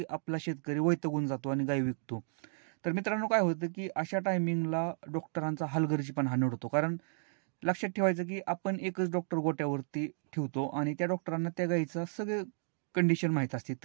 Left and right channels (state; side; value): silent; left; digital silence